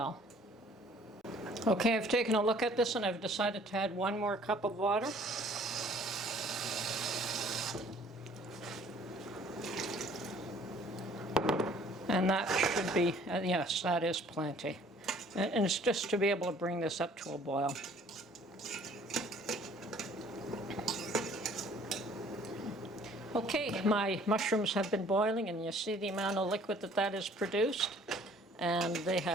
Okay, I've taken a look at this and I've decided to add 1 more cup of water. And that should be, yes, that is plenty. And it's just to be able to bring this up to a boil. Okay, my mushrooms have been boiling, and you see the amount of liquid that is produced. And they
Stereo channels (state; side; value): normal; both; correlation 0.55